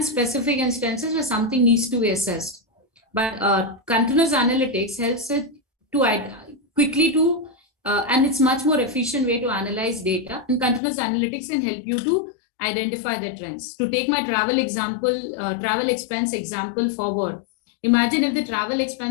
specific instances where something needs to be assessed. But continuous analytics helps it to quickly to and it's much more efficient way to analyze data. And continuous analytics can help you to identify the trends. To take my travel example, travel expense example forward, imagine if the travel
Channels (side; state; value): right; drops out; at 10.8 s